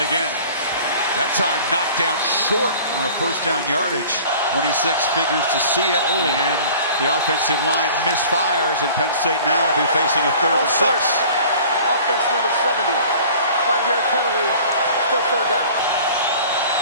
again. That time knocked down short on a 1st down yardage. 26 figures to see it. And the offensive line misfires, and Penn State now will be facing a 3rd and 6. Offense number 70. 5-yard penalty. Still 3rd down.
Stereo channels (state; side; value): inverted; both; correlation -0.46